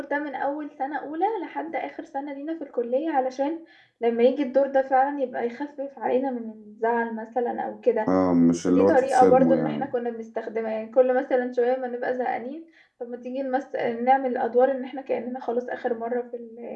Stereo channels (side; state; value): both; identical; correlation 1.00